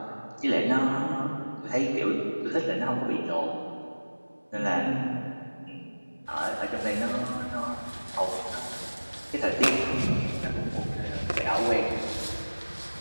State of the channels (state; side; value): inverted; both; correlation -1.00